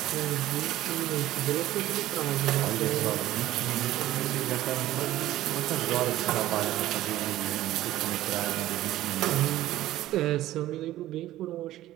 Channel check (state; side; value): quieter; left; 14.7 dB